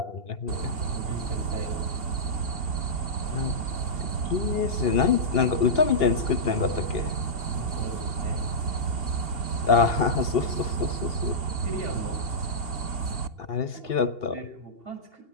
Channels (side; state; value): right; late; 2.8 ms